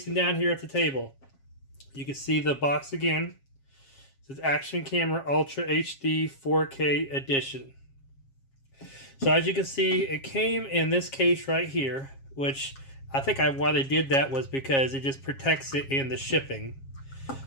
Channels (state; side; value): late; right; 7.4 ms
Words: down here at the table. You can see the box again. It says Action Camera Ultra HD 4K Edition. So as you can see, it came in this case right here, which I think why they did that was because it just protects it in the shipping.